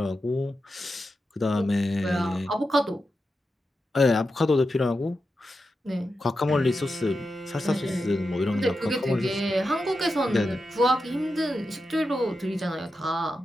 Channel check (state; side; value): normal; both; correlation 0.89